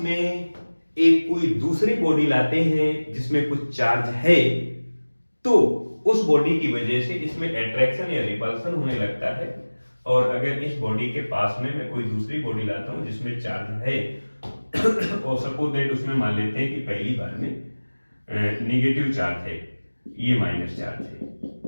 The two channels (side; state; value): both; inverted; correlation -1.00